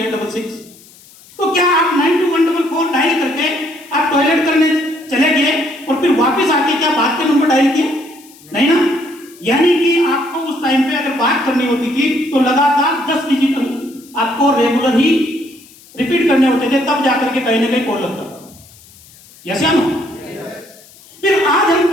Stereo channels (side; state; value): left; noise; hiss, 24 dB below the sound